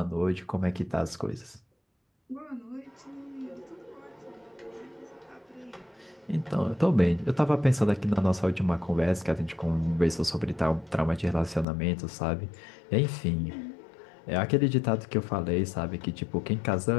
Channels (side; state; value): right; drops out; at 11.7 s